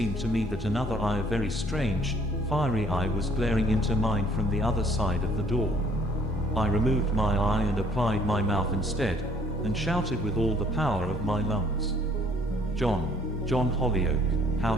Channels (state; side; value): normal; both; correlation 0.60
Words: to me that another eye, a very strange, fiery eye, was glaring into mine from the other side of the door. I removed my eye and applied my mouth instead, and shouted with all the power of my lungs. John Holyoake, how